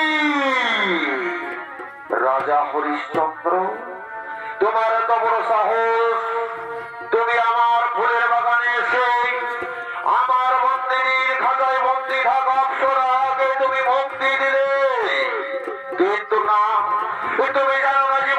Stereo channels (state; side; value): identical; both; correlation 1.00